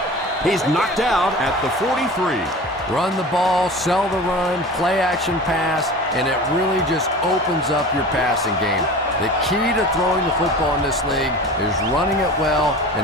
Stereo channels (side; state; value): both; normal; correlation 0.36